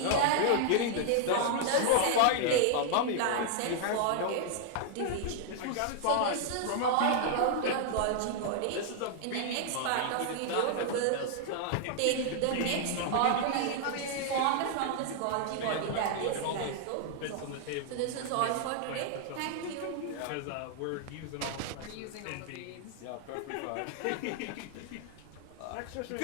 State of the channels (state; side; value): different; both; correlation -0.01